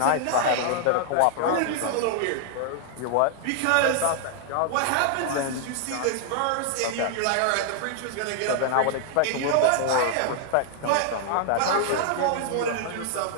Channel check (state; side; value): different; both; correlation -0.01